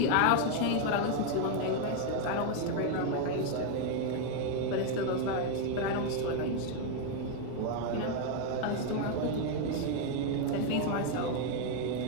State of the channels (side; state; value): both; different; correlation 0.01